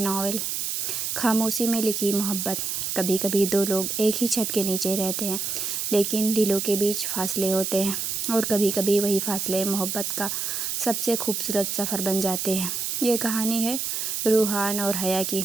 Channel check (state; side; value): noise; right; hiss, 2 dB below the sound